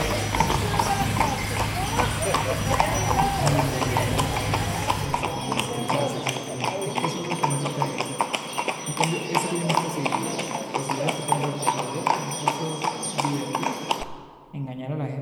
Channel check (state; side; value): identical; both; correlation 1.00